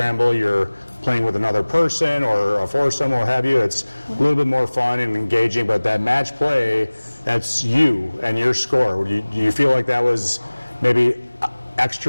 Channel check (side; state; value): both; inverted; correlation -1.00